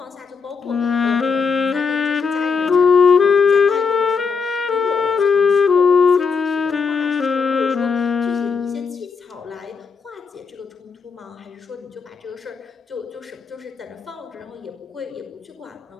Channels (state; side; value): quieter; right; 5.4 dB